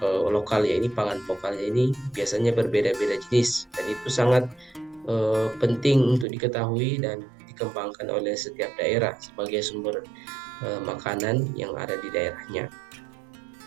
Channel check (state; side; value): drops out; left; at 6.2 s